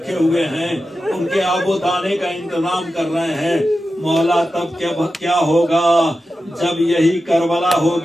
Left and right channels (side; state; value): both; normal; correlation 0.92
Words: हुए हैं, उनके आबो दाने का इंतजाम कर रहे हैं। मौला तब क्या होगा जब यही करबला